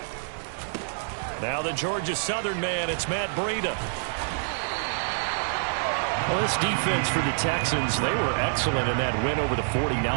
Now the Georgia Southern man, it's Matt Breida. Well, this defense for the Texans, they were excellent in that win over the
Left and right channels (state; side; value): silent; left; 60 dB below the other